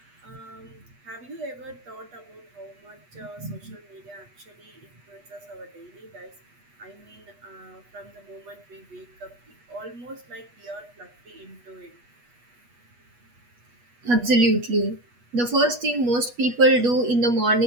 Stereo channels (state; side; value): late; left; 8.3 ms